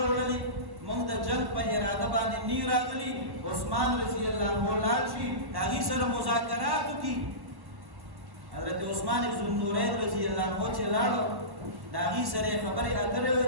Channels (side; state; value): left; late; 1.1 ms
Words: موږ د جنګ په اراده باندې نی راغلي عثمان رضی الله عنه لاړ شي د هغې سره مذاکرات وکړي حضرت عثمان ذوالنورین رضی الله عنه چې لاړو د هغې سره یې خبرې اترې